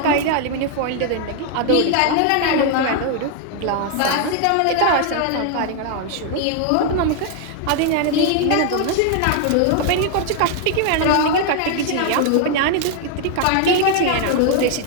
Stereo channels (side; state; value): both; different; correlation 0.00